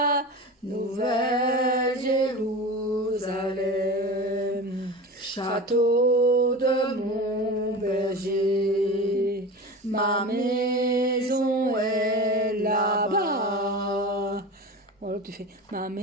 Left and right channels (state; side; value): normal; both; correlation 0.30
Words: nouvelle Jérusalem. Château de mon berger, ma maison est là-bas. Voilà, tu fais ma